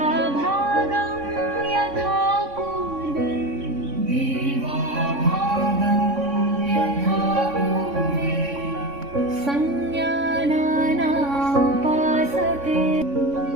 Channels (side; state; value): left; late; 3.6 ms